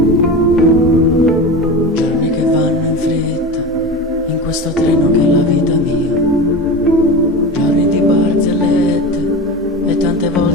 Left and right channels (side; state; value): both; normal; correlation 0.27